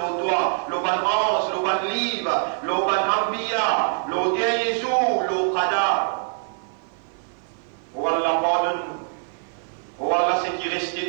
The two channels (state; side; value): silent; left; 56 dB below the other